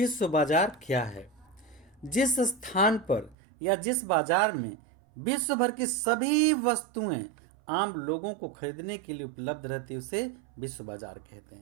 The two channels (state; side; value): drops out; left; at 3.4 s